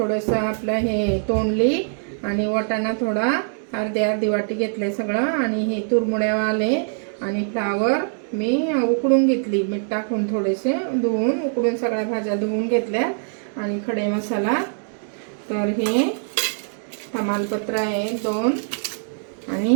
आपलं हे तोंडली, आणि वाटाणा थोडा अर्धी वाटी घेतले सगळं, आणि हे तुरमुड्यावाले आणि फ्लावर मी उकडून घेतली, मीठ टाकून थोडेसे धुवून उकडून सगळ्या भाज्या धुवून घेतल्या, आणि खडे मसाला तर हे तमालपत्र आहे 2,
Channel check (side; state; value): left; silent; digital silence